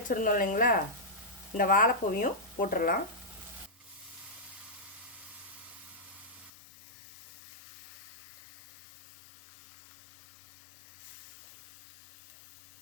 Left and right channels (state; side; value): drops out; right; at 6.5 s